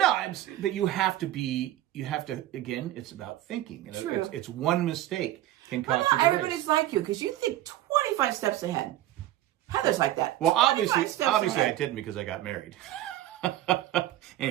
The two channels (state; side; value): quieter; left; 14.1 dB